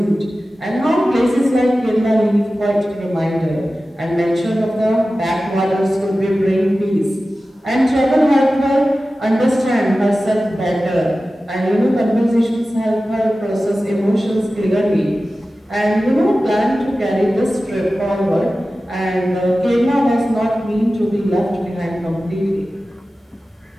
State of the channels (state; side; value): normal; both; correlation 0.95